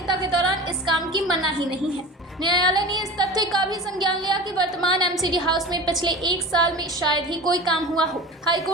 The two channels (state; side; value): normal; both; correlation 0.35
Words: के दौरान इस काम की मनाही नहीं है। न्यायालय ने इस तथ्य का भी संज्ञान लिया कि वर्तमान एमसीडी हाउस में पिछले 1 साल में शायद ही कोई काम हुआ हो।